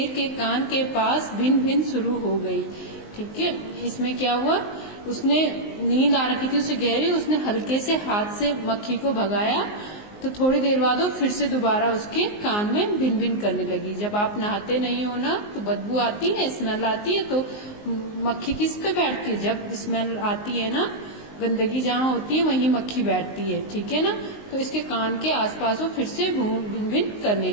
के कान के पास भिन भिन शुरू हो गई। ठीक है, इसमें क्या हुआ, उसने नींद आ रखी थी उसे गहरी, उसने हल्के से हाथ से मक्खी को भगाया तो थोड़ी देर बाद वो फिर से दोबारा उसके कान में भिन भिन करने लगी। जब आप नहाते नहीं हो ना तो बदबू आती है, स्मेल आती है, तो मक्खी किस पे बैठती है, जब स्मेल आती है ना, गंदगी जहाँ होती है वहीं मक्खी बैठती है। ठीक है ना, तो इसके कान के आसपास वो फिर से भिन भिन करने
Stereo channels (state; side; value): late; right; 19 ms